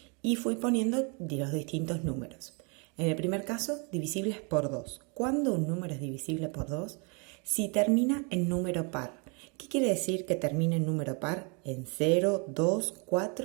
y fui poniendo los distintos números. En el primer caso, divisibles por 2. ¿Cuándo un número es divisible por 2? Si termina en número par. ¿Qué quiere decir que termine en número par? En 0, 2,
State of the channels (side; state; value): left; quieter; 34.5 dB